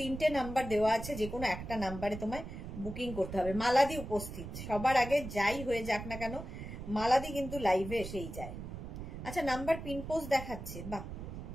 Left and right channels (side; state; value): right; noise; rumble, 9 dB below the sound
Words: নাম্বার দেওয়া আছে, যে কোনো একটা নাম্বারে তোমায় বুকিং করতে হবে। মালাদি উপস্থিত, সবার আগে যাই হয়ে যাক না কেন মালাদি কিন্তু লাইভে এসেই যায়। আচ্ছা, নাম্বার পিন পোস্ট দেখাচ্ছে, বাহ,